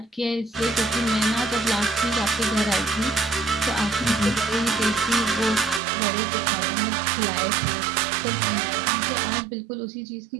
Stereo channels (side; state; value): left; drops out; at 5.8 s